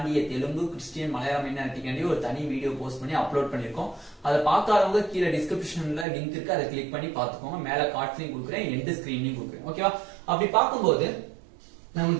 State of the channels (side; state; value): left; drops out; at 6.1 s